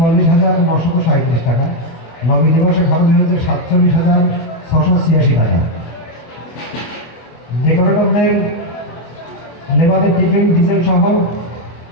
টাকা। নবী দিবসে খরচ হয়েছে 47,686 টাকা। ডেকোরেটরদের লেবারের টিফিন ডিজেল সহ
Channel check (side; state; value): right; late; 24 ms